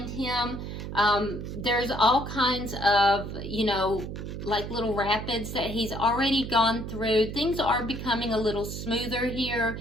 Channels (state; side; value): noise; right; hum, 7 dB below the sound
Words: him, there's all kinds of, you know, like little rapids that he's already gone through. Things are becoming a little smoother here,